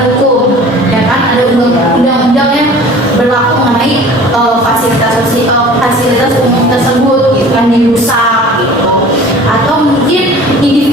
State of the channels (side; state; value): both; normal; correlation 0.45